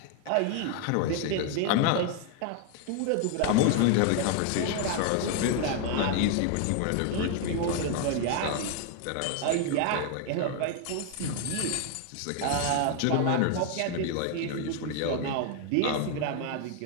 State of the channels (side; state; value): both; different; correlation 0.00